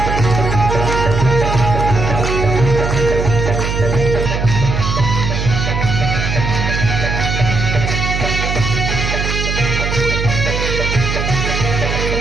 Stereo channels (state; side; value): noise; right; hum, 2 dB below the sound